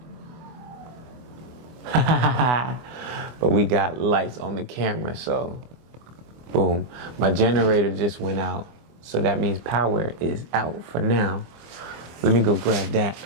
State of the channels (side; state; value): left; late; 24 ms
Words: But we got lights on the camera, so boom. My generator just went out, so that means power is out for now. Let me go grab that,